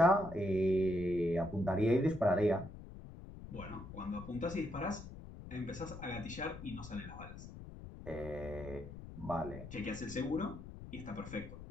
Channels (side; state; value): left; noise; rumble, 13 dB below the sound